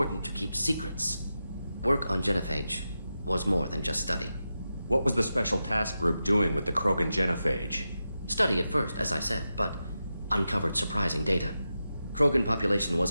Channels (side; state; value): both; inverted; correlation -0.90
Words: to keep secrets. Work on genophage was more than just study. What was the Special Task Group doing with the Krogan genophage? Study at first, as I said, but uncovered surprising data. Krogan population